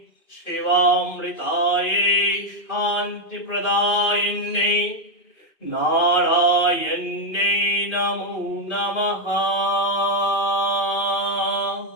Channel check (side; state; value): right; late; 2.5 ms